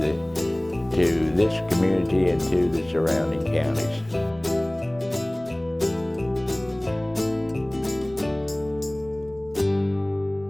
to this community and to the surrounding counties.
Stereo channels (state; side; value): noise; right; rumble, 24 dB below the sound